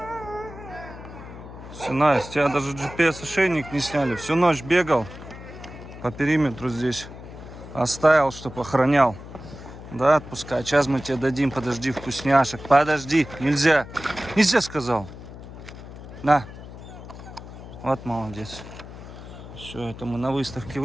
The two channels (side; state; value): left; noise; hum, 14 dB below the sound